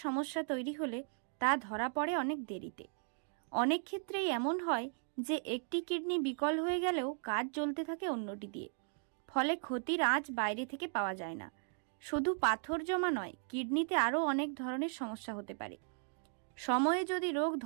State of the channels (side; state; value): left; silent; 53 dB below the other